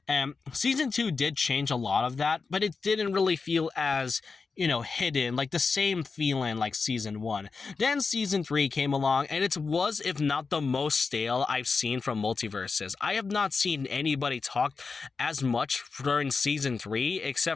Season 2 did change a lot of that, but it didn't really feel as, you know, hidden, like the same feeling like Season 1. Then Season 3 came along, and it was, if not the most stale I've seen from Multiversus. I have not seen anybody talk as much during Season 3,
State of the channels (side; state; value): right; quieter; 4.7 dB